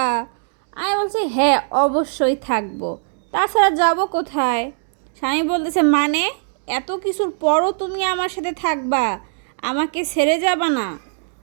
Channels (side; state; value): left; silent; digital silence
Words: আমি বলছি হ্যাঁ অবশ্যই থাকবো, তাছাড়া যাব কোথায়? স্বামী বলতেছে মানে এত কিছুর পরও তুমি আমার সাথে থাকবা, আমাকে ছেড়ে যাবা না?